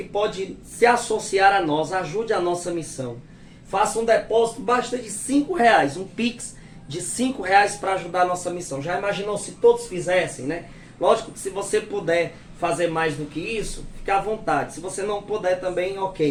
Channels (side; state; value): both; identical; correlation 1.00